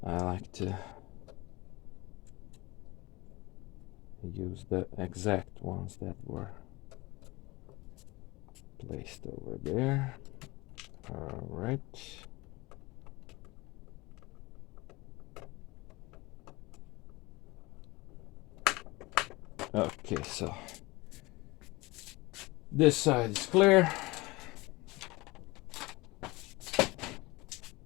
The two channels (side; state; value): right; quieter; 22.6 dB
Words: I like to use the exact ones that were placed over there. All right. Okay, so this side is clear.